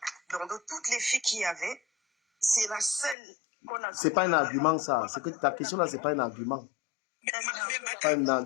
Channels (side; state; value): right; drops out; at 3.2 s